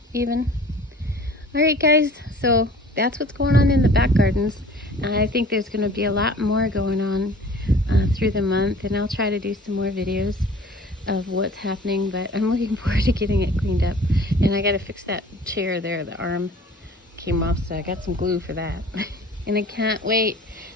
even. All right, guys, so that's what's going on in the back gardens. And I think there's going to be a lot more going on through the month, and I'll try to do some more videos of what's happening, but I'm looking forward to getting it cleaned up. And I got to fix that chair there. The arm came off, so I got some glue for that. And I can't wait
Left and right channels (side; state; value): both; normal; correlation 0.47